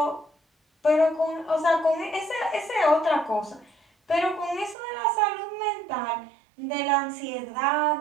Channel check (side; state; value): left; drops out; at 4.8 s